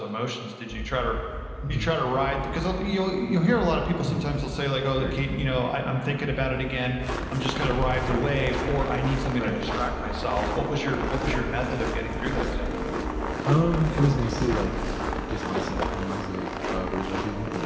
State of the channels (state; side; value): identical; both; correlation 1.00